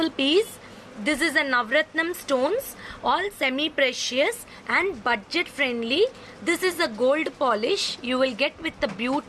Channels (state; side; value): identical; both; correlation 1.00